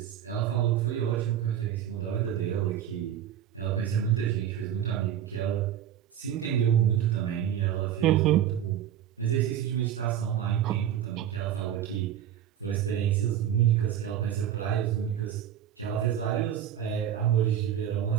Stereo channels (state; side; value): quieter; left; 10.2 dB